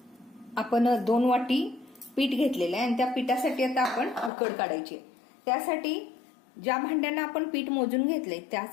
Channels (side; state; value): right; drops out; at 4.3 s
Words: आपण 2 वाटी पीठ घेतलेलं आहे आणि त्या पिठासाठी आता आपण उकड काढायची. त्यासाठी ज्या भांड्यानं आपण पीठ मोजून घेतले